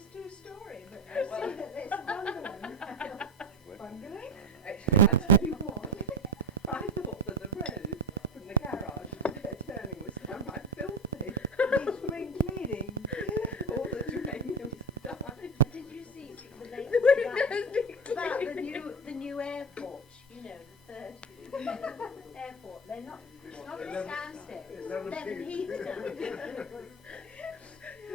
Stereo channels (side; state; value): both; normal; correlation 0.21